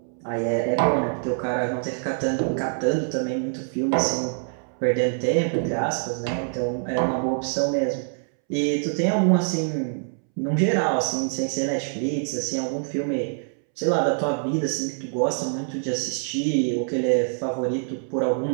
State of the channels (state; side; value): silent; left; 62 dB below the other